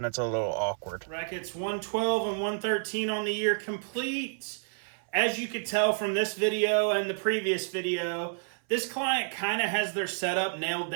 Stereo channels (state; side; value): silent; left; 58 dB below the other